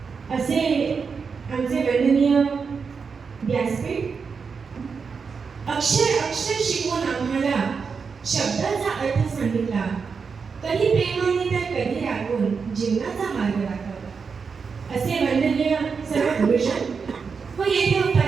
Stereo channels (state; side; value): quieter; left; 5.5 dB